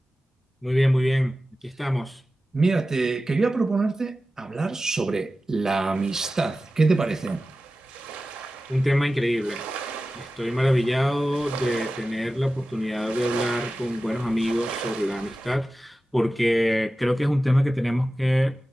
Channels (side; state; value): both; normal; correlation 0.95